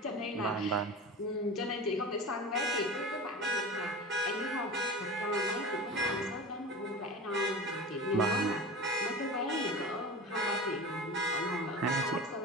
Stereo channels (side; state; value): both; normal; correlation 0.31